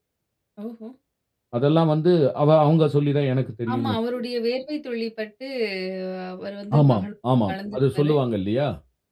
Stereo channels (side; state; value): both; identical; correlation 1.00